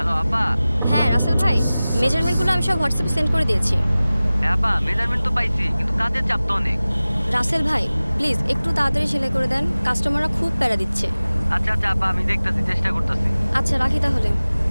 আপা। হ্যাঁ রাসেল ভাই, মেজারমেন্টগুলো আমি সব হোয়াটসঅ্যাপে সেন্ড করে দিয়েছি। হ্যাঁ আপা, মেজারমেন্ট তো পাইছি, কিন্তু কাজের চাপ তো অনেক। রাসেল ভাই প্লিজ একটু তাড়াতাড়ি সেলাই করে দেন, কাস্টমাররা খুব প্যারা দিচ্ছে। আচ্ছা আচ্ছা আপা, আমি দেখতেছি, চেষ্টা করতেছি। আচ্ছা রাখি তাহলে,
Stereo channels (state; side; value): inverted; both; correlation -0.98